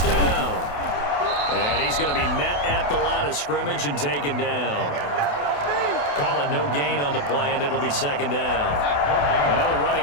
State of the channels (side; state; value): right; late; 28 ms